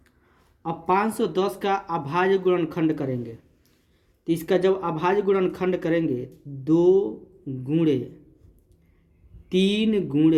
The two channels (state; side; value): identical; both; correlation 1.00